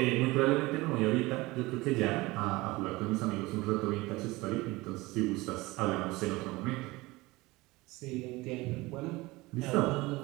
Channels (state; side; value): quieter; left; 21.3 dB